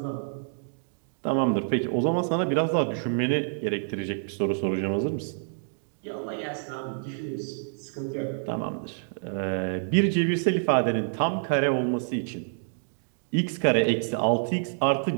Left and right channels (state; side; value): silent; left; digital silence